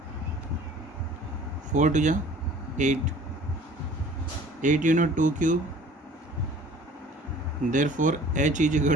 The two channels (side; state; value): both; normal; correlation 0.49